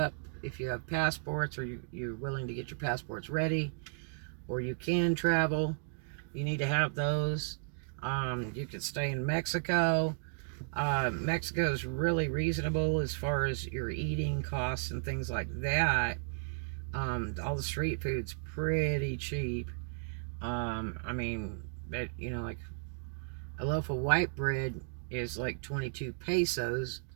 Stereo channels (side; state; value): left; silent; digital silence